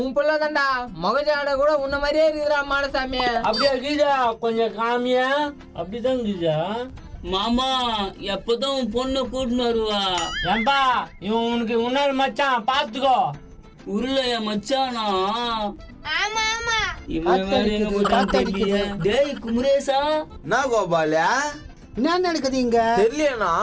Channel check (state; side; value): identical; both; correlation 1.00